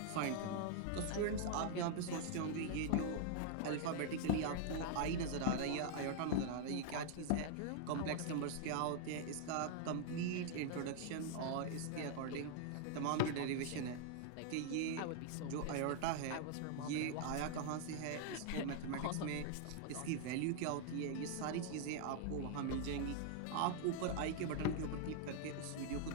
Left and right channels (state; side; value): different; both; correlation 0.00